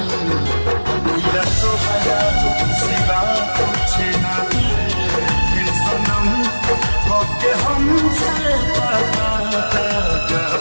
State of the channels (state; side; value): inverted; both; correlation -1.00